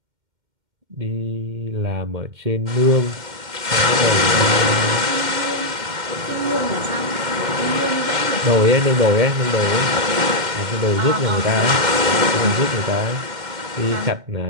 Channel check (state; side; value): late; left; 2.1 ms